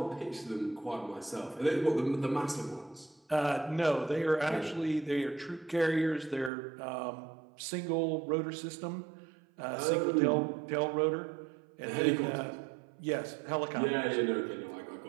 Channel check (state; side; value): drops out; left; at 6.5 s